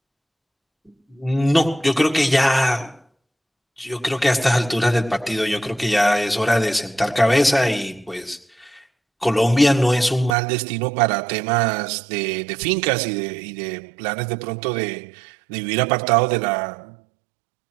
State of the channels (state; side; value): drops out; left; at 10.4 s